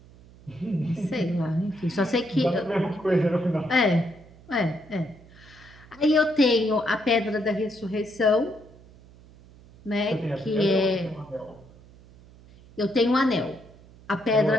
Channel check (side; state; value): right; noise; hum, 23 dB below the sound